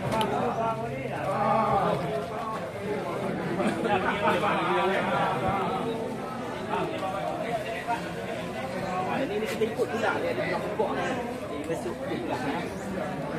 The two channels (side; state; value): both; identical; correlation 1.00